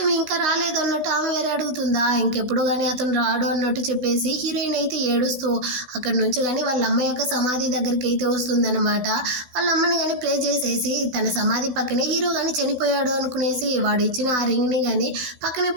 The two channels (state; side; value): late; left; 16 ms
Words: ఇంకా రాలేదు అన్నట్టు ఆమె వేరే అడుగుతుందా. ఇంకెప్పుడు కానీ అతను రాడు అన్నట్టు చెప్పేసి హీరోయిన్ అయితే ఏడుస్తూ అక్కడ నుంచి కానీ వాళ్ళ అమ్మ యొక్క సమాధి దగ్గరికి అయితే వస్తుందన్నమాట. వాళ్ళ అమ్మని కానీ ప్రే చేసేసి తన సమాధి పక్కనే హీరో కానీ చనిపోయాడు అనుకునేసి వాడు ఇచ్చిన ఆ రింగ్ని కానీ పక్కనే